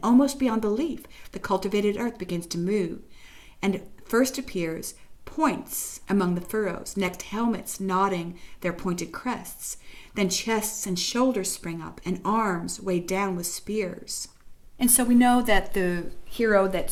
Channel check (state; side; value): identical; both; correlation 1.00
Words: almost beyond belief, the cultivated earth begins to move, and first appears points among the furrows, next helmets nodding their pointed crests. Then chests and shoulders spring up, and arms weighed down with spears." And so we know that the hero that